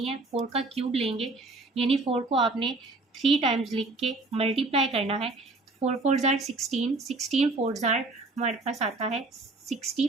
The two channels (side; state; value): left; quieter; 3.3 dB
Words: है, 4 का क्यूब लेंगे, यानी 4 को आपने 3 टाइम्स लिख के मल्टीप्लाई करना है, 4 4 जार 16, 16 4 जार हमारे पास आता है